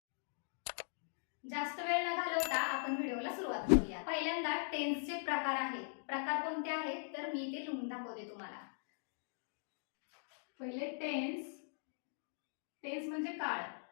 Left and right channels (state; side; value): silent; right; digital silence